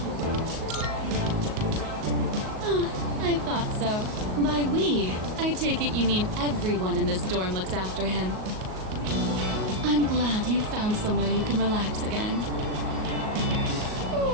Oh, I thought so. By we, I take it you mean everyone in this dorm looks after him. I'm glad you found somewhere you can relax again.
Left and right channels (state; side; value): late; left; 38 ms